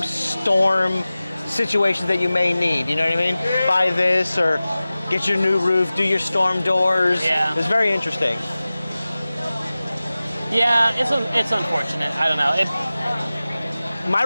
situations that you may need. You know what I mean? Buy this or get your new roof, do your storm doors. Yeah. It was very interesting. Yeah, it's unfortunate. I don't know. My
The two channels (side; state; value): both; inverted; correlation -0.97